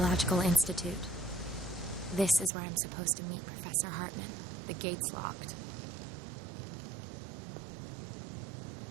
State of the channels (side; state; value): left; drops out; at 2.5 s